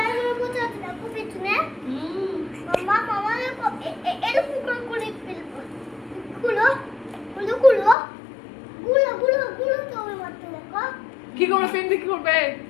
কোথায় আছে দেখো পেছনে মামা দেখো এরকম করে ফেলবো। খুলো তো ওই মাত্র দেখো কি করবে? পেন দিয়ে কি করবে?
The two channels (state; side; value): drops out; right; at 8.0 s